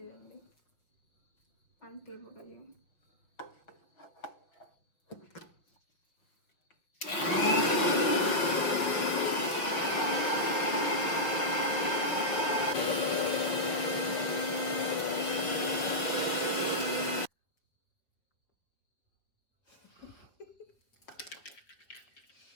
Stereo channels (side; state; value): right; late; 5.9 ms